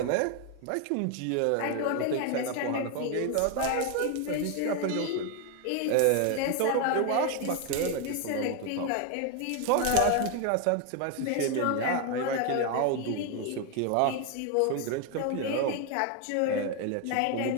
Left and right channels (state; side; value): different; both; correlation 0.01